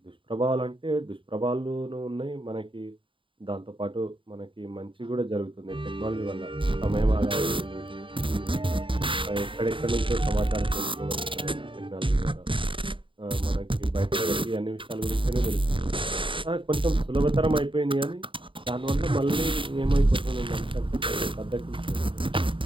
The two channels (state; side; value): late; left; 0.25 ms